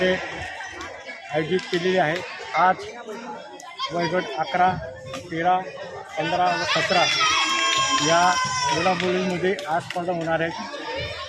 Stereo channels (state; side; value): identical; both; correlation 1.00